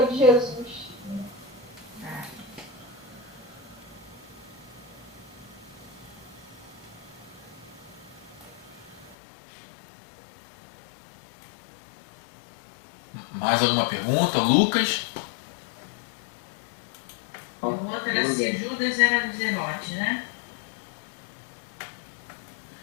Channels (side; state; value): right; drops out; at 9.2 s